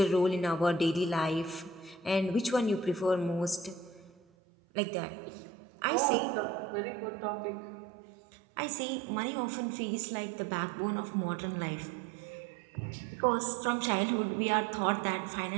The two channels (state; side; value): drops out; left; at 4.2 s